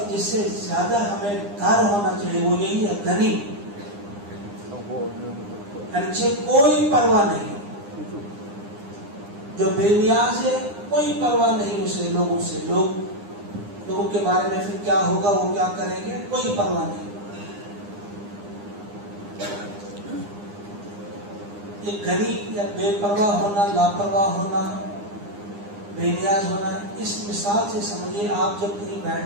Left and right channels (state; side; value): late; left; 9.8 ms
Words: جس سے زیادہ ہمیں ڈر ہونا چاہیے وہ یہی ہے، غنی، یعنی کوئی پرواہ نہیں، جو بے نیاز ہے، کوئی پرواہ نہیں اسے لوگوں سے، لوگوں کے بارے میں پھر کیا ہوگا، وہ کیا کریں گے، کوئی پرواہ نہیں۔ یہ غنی یا بے پرواہ ہونا، لاپرواہ ہونا، بے نیاز ہونا، اس مثال سے سمجھیے آپ جب کہیں